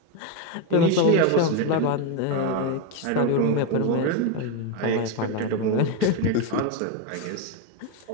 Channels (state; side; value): different; both; correlation 0.02